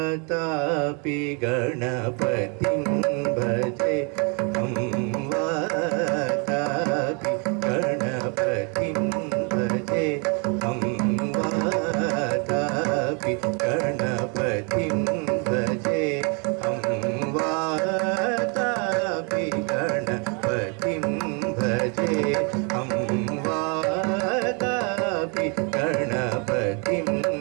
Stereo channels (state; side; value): quieter; left; 35.0 dB